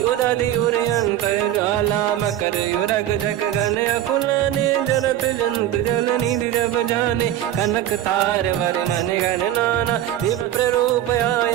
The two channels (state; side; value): quieter; left; 12.3 dB